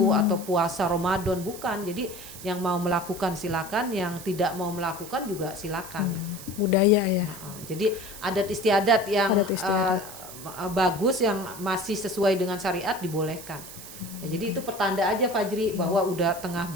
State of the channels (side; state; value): right; noise; hiss, 14 dB below the sound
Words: atau puasa Ramadan, bukan. Jadi yang mau melakukan silakan, yang tidak mau melakukan juga silakan. Budaya ya. Jadi adat istiadat yang Adat istiadat. bagus yang masih sesuai dengan syariat dibolehkan. Ya, jadi itu pertanda aja Fajri bahwa udah tengah